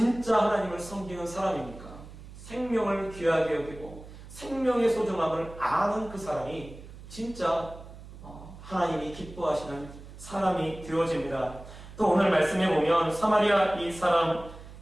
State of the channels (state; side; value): noise; right; hum, 16 dB below the sound